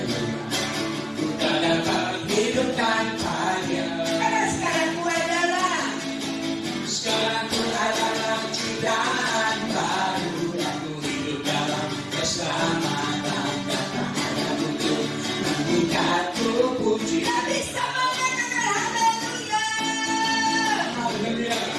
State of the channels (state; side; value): identical; both; correlation 1.00